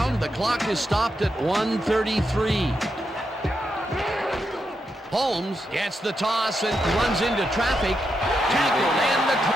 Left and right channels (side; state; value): both; normal; correlation 0.84